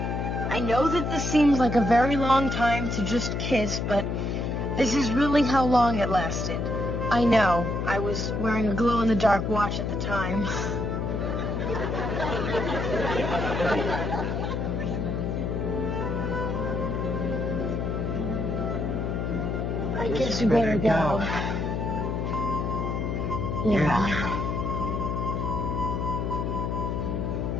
I know that this seems like a very long time to just kiss, but this is really how long it lasted. I know. I was wearing a glow-in-the-dark watch at the time. I guess we better go. Yeah.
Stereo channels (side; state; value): left; noise; hum, 1 dB below the sound